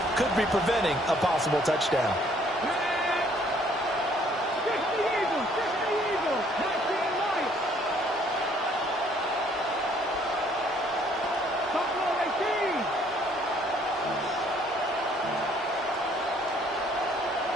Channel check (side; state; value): both; normal; correlation 0.62